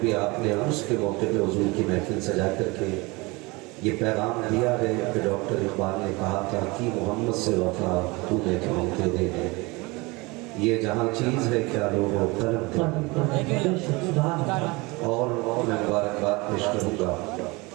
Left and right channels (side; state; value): left; quieter; 24.7 dB